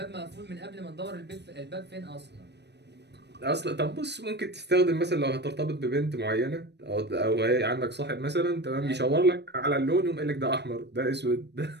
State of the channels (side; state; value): left; late; 0.50 ms